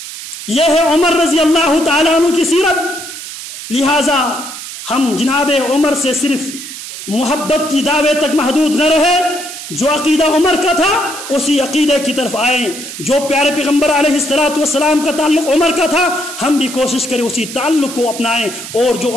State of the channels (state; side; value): noise; right; hiss, 10 dB below the sound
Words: یہ ہے عمر رضی اللہ تعالیٰ عنہ کی سیرت۔ لہٰذا ہم جناب عمر سے صرف محبت کی دعوے تک محدود نہ رہے، جو عقیدہ عمر کا تھا اسی عقیدے کی طرف آئیں، جو پیارے پیغمبر علیہ السلام کا تعلق عمر کا تھا ہم بھی کوشش کریں اسی تعلق کو اپنائیں، اور جو